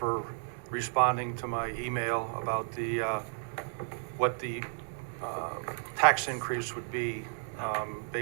responding to my email about what the tax increase would be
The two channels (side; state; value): left; silent; digital silence